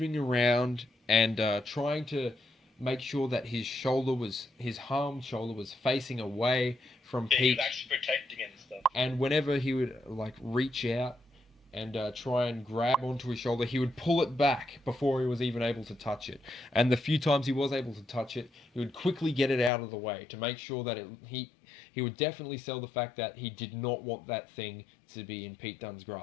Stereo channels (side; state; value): right; drops out; at 19.7 s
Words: around and trying to make sure that his harmed shoulder was facing away from Yeah, he Pete. was actually protecting it and stuff. And whenever he would like reach out and try and grab onto his shoulder, he would pull it back before he was even able to touch it. And the few times he was able to touch it, he would quickly get it out of the way to make sure that he would definitely sell the fact that he did not want that thing to be in Pete Dunne's